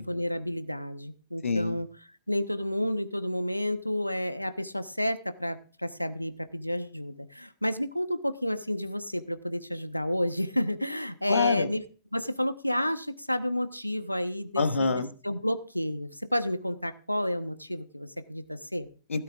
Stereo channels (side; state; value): both; inverted; correlation -0.91